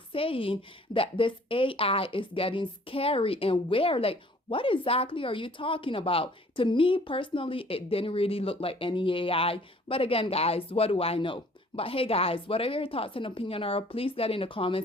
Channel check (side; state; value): both; normal; correlation 0.55